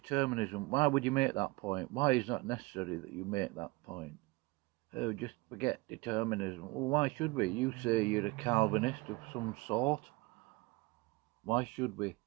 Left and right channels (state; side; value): quieter; left; 23.8 dB